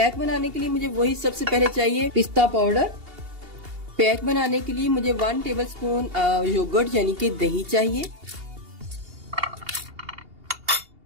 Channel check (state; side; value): late; left; 2.8 ms